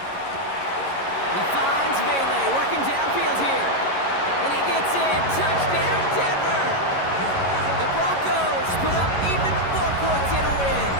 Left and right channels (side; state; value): right; late; 11 ms